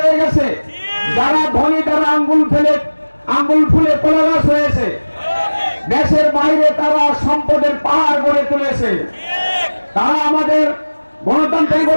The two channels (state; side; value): inverted; both; correlation -1.00